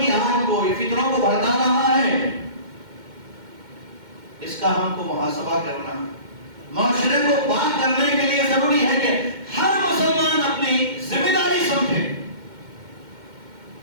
آگ کو، یہ فتنوں کو بھڑکا رہا ہے؟ اس کا ہم کو محاسبہ کرنا، معاشرے کو پاک کرنے کے لیے ضروری ہے کہ ہر مسلمان اپنی ذمہ داری سمجھے۔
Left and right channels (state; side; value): late; left; 2.1 ms